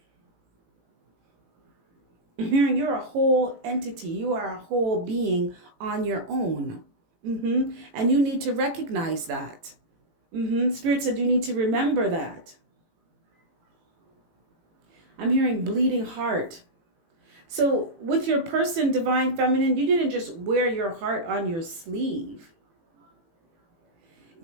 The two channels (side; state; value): left; late; 18 ms